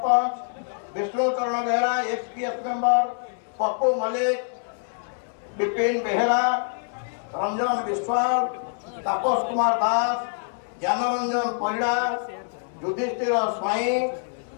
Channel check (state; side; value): silent; right; 61 dB below the other